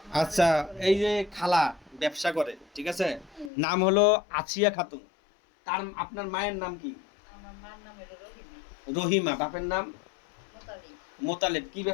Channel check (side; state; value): right; drops out; at 3.5 s